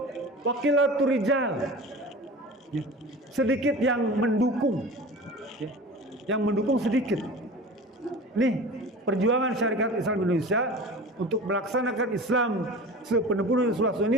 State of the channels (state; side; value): normal; both; correlation 0.36